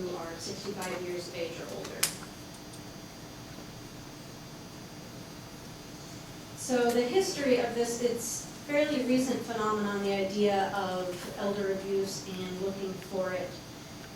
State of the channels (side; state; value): both; identical; correlation 1.00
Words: are 65 years of age or older. So the history of this, it's fairly recent phenomenon, the idea of elder abuse and looking for it.